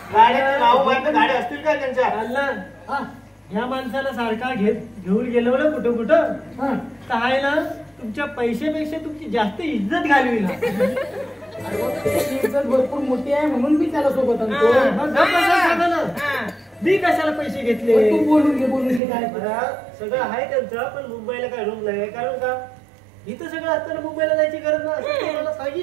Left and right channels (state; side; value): drops out; left; at 19.0 s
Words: गाड्याची नाव माहिती, गाड्या असतील काय त्यांच्या? अल्ला, ह्या माणसाला सारखा घेऊन गेलो ना कुठं काय ना, तुमच्या पैशापेक्षा तुमची जास्त इज्जत घालवी ना. इज्जत भरपूर मोठी आहे म्हणून मी त्याला सोबत आणतो. मी कशाला पैसे घेतले? तू बोलून घे काय. सगळं आहे त्यांचं, पण मुंबईला काय रूम नाही. कारण का इथं सगळं असताना मुंबईला जायची गरज नाही, मला